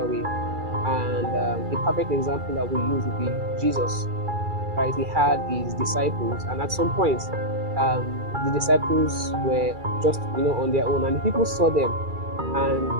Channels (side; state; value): left; late; 2.3 ms